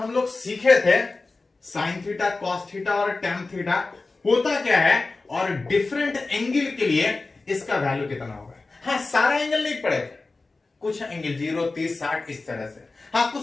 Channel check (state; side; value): quieter; right; 3.6 dB